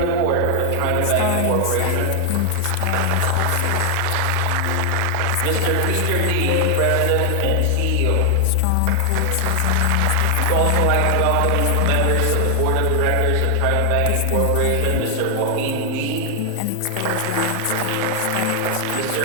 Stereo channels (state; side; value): different; both; correlation 0.00